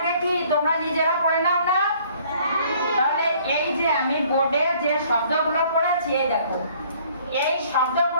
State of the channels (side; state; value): both; inverted; correlation -0.58